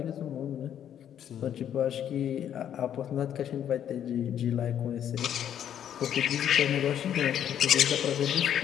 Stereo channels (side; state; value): right; quieter; 9.8 dB